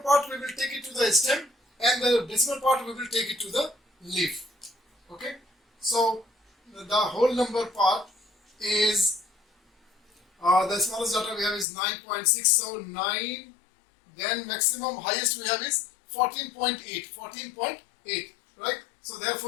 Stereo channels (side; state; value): right; drops out; at 11.7 s